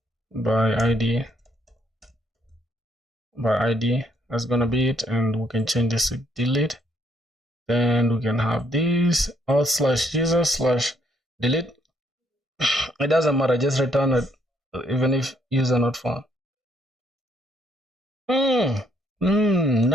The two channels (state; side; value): normal; both; correlation 0.70